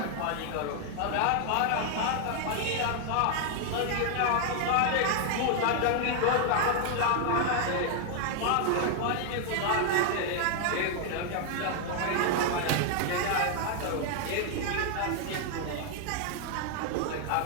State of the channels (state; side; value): different; both; correlation 0.00